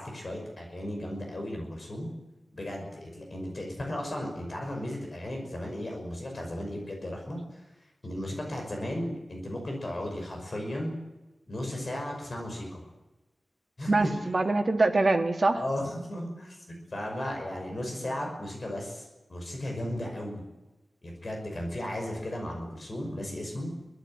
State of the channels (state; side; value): normal; both; correlation 0.95